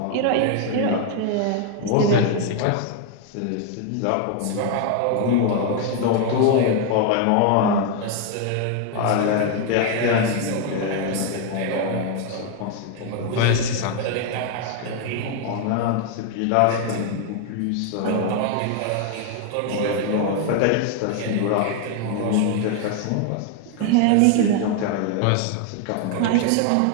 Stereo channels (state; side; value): different; both; correlation 0.00